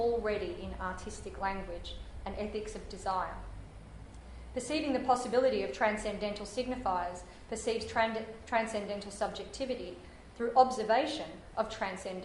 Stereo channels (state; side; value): identical; both; correlation 1.00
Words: in artistic language, an ethics of desire. Perceiving the possibility of transcendental signifiers perceives transcendental subjectivity through observation of